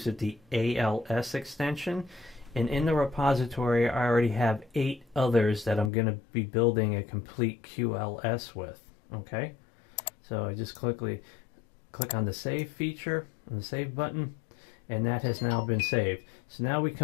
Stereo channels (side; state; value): right; drops out; at 5.9 s